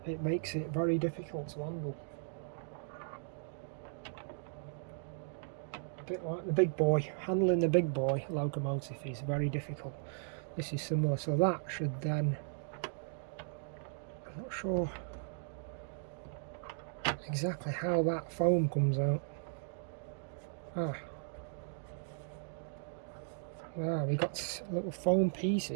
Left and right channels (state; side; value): silent; left; digital silence